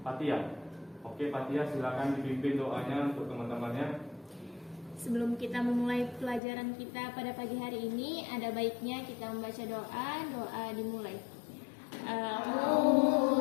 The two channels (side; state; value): right; drops out; at 6.4 s